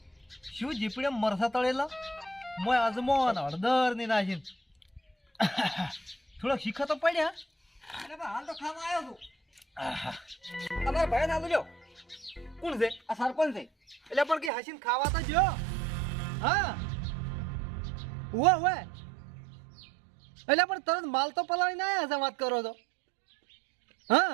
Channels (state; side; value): drops out; left; at 14.5 s